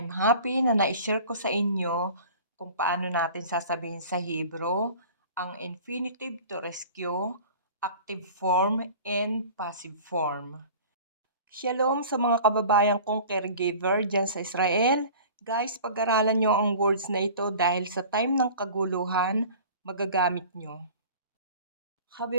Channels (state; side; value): inverted; both; correlation -0.42